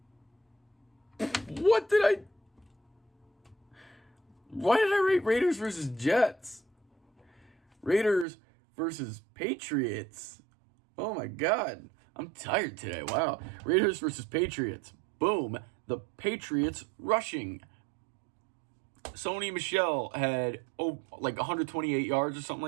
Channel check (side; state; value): left; drops out; at 8.2 s